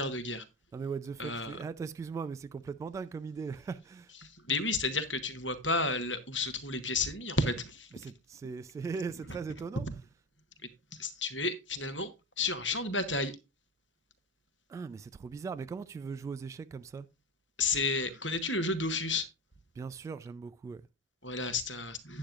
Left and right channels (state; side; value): normal; both; correlation 0.23